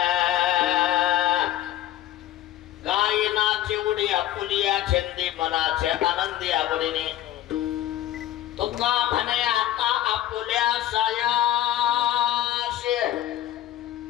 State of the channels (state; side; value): quieter; right; 13.1 dB